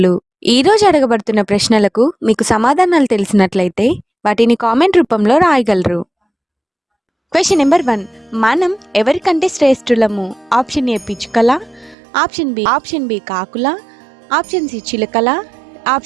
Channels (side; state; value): left; drops out; at 12.0 s